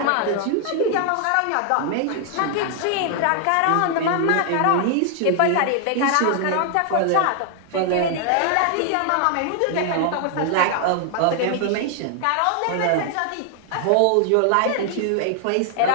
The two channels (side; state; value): both; different; correlation 0.00